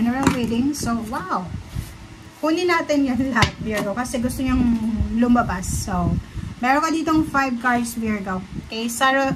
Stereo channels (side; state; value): both; identical; correlation 1.00